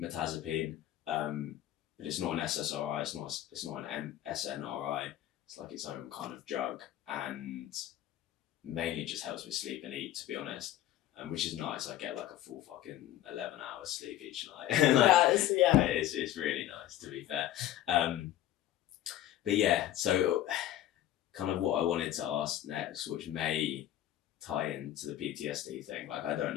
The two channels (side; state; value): right; quieter; 12.8 dB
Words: mirtazapine, but it's not an SSRI. It's not an SNRI. It's like its own kind of drug, and mainly just helps me sleep and eat, to be honest. Which is nice. I get like a full fucking 11 hours sleep each night. Like, it's really nice, to be fair. But yeah, so kind of what I wanted to ask next, which may tie into the PTSD thing. Like, I don't